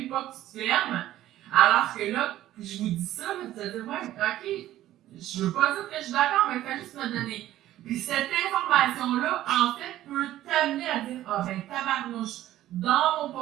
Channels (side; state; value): left; quieter; 13.8 dB